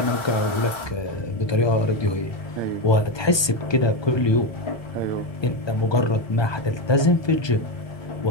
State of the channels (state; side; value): late; right; 1.2 ms